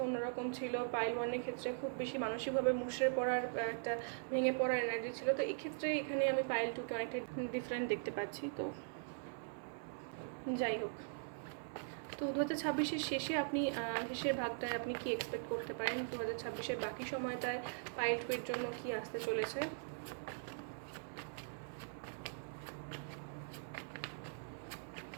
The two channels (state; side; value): silent; left; 50 dB below the other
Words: অন্যরকম ছিল। পাইল 1-এর ক্ষেত্রে খুব বেশি মানসিকভাবে মুষড়ে পড়ার একটা ভেঙে পড়ার এনার্জি ছিল, তো এক্ষেত্রে এখানে আমি পাইল 2-কে অনেকটা ডিফারেন্ট দেখতে পাচ্ছি। তো যাই হোক, তো 2026-এর শেষে আপনি শেষের ভাগটায় আপনি কি এক্সপেক্ট করতে পারেন, 2026-এর বাকি সময়টায় পাইল 2-এর জন্য কি আসতে চলেছে।